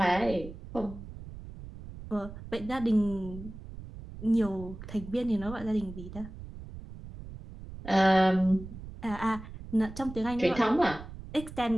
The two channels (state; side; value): noise; right; rumble, 13 dB below the sound